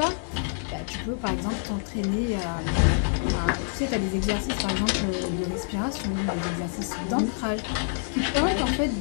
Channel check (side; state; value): right; silent; digital silence